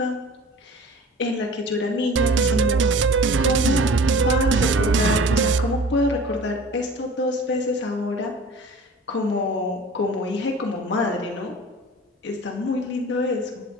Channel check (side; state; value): both; normal; correlation 0.42